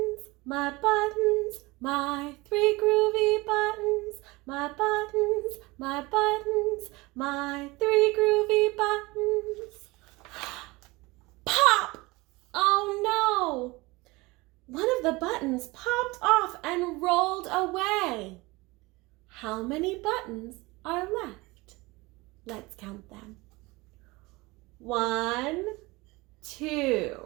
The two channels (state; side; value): quieter; left; 22.8 dB